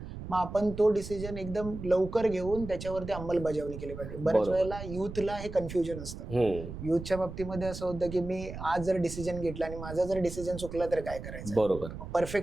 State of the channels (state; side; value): noise; right; rumble, 10 dB below the sound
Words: मग आपण तो डिसिजन एकदम लवकर घेऊन त्याच्यावरती अंमलबजावणी केली पाहिजे. बऱ्याच वेळेला युथला हे कन्फ्युजन असतं. युथच्या बाबतीमध्ये असं होतं की मी आज जर डिसिजन घेतला आणि माझा जर डिसिजन चुकला तर काय करायचं. बरोबर.